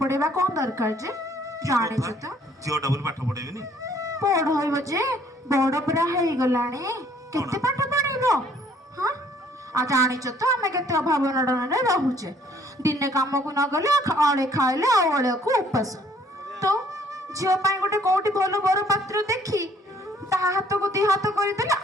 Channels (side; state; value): both; normal; correlation 0.61